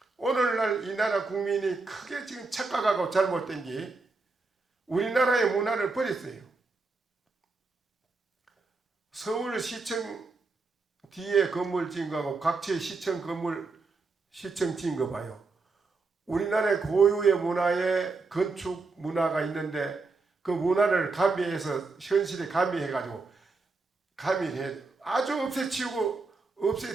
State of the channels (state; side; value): quieter; left; 3.9 dB